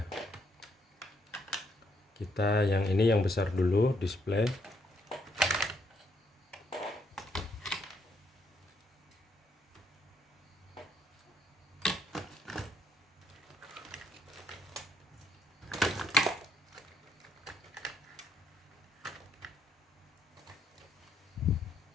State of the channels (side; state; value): both; normal; correlation 0.72